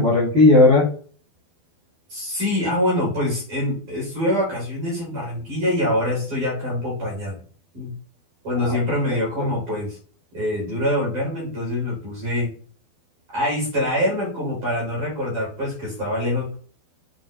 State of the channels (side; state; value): left; late; 12 ms